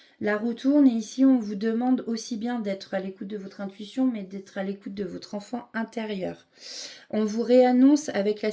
La roue tourne et ici, on vous demande aussi bien d'être à l'écoute de votre intuition, mais d'être à l'écoute de votre enfant intérieur. On vous réannonce avec la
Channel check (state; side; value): identical; both; correlation 1.00